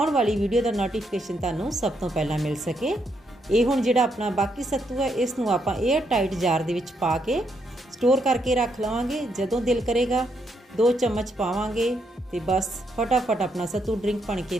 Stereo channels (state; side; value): normal; both; correlation 0.77